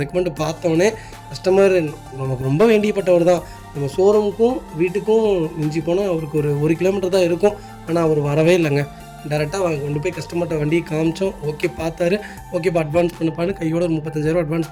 பார்த்தோன்னே கஸ்டமர் நமக்கு ரொம்ப வேண்டியப்பட்டவர் தான். நம்ம ஷோரூமுக்கும் வீட்டுக்கும் மிஞ்சி போனால் அவருக்கு ஒரு 1 கிலோமீட்டர் தான் இருக்கும். ஆனால் அவர் வரவே இல்லைங்க. டேரெக்டாக கொண்டு போய் கஸ்டமர்கிட்ட வண்டியை காமிச்சோம். ஓகே பார்த்தாரு. ஓகேப்பா அட்வான்ஸ் பண்ணுப்பான்னு கையோட ஒரு 35,000 அட்வான்ஸ்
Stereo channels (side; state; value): both; identical; correlation 1.00